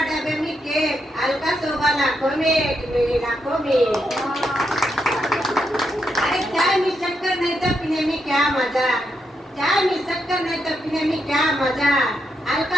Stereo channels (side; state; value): both; normal; correlation 0.82